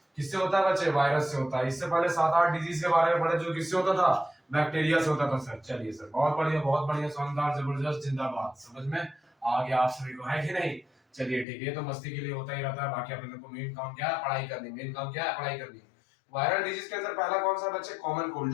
किससे होता है बच्चे? वायरस से होता है। इससे पहले 7-8 डिजीज के बारे में पढ़े जो किससे होता था? बैक्टीरिया से होता था सर। चलिए सर, बहुत बढ़िया, शानदार, जबरदस्त, जिंदाबाद। समझ में आ गया आप सभी को, है कि नहीं? चलिए ठीक है, ये तो मस्ती के लिए होता ही रहता है। बाकी अपन लोग को मेन काम क्या है? पढ़ाई करनी। मेन काम क्या है? पढ़ाई करनी। वायरल डिजीज के अंदर पहला कौन सा बच्चे? कॉमन कोल्ड,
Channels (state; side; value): drops out; right; at 11.5 s